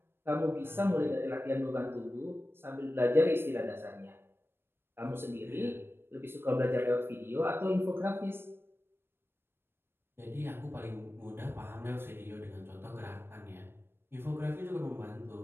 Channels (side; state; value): left; late; 0.11 ms